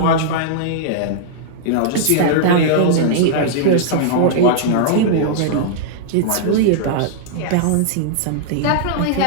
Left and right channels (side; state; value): both; different; correlation -0.02